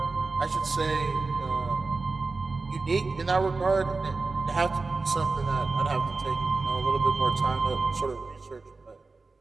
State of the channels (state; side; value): quieter; left; 3.8 dB